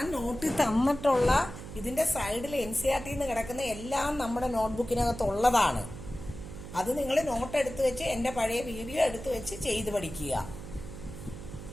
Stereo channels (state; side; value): noise; right; hum, 12 dB below the sound